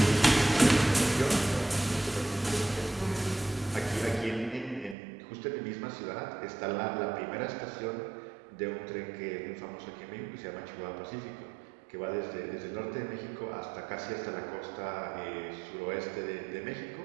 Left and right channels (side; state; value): left; drops out; at 5.0 s